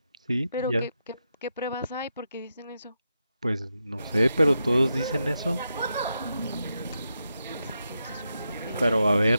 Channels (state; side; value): inverted; both; correlation -0.86